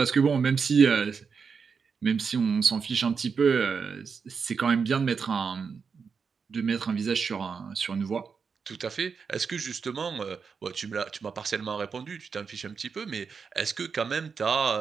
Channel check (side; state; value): left; quieter; 5.7 dB